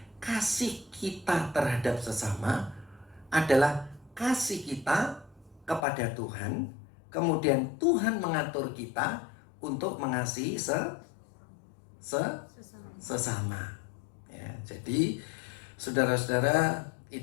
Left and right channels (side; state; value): right; drops out; at 5.9 s